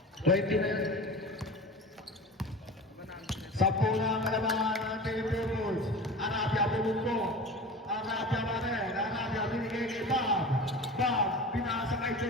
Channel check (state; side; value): normal; both; correlation 0.34